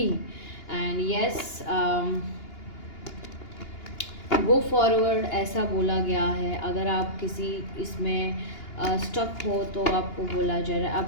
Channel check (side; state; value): right; late; 2.8 ms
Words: एंड यस, गो फॉरवर्ड ऐसा बोला गया है. अगर आप किसी इसमें स्टक हो तो आपको बोला जा रहा है,